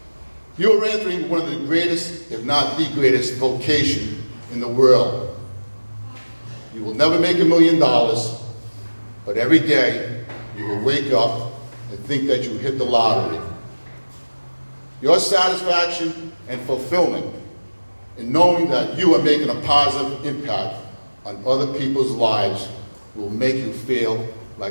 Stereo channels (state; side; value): inverted; both; correlation -1.00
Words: You are entering one of the greatest, if not the greatest, vocation in the world. You will never make $1 million, but every day you will wake up and think that you hit the lottery. Your satisfaction and fulfillment in knowing that you are making a positive impact on other people's lives will make you feel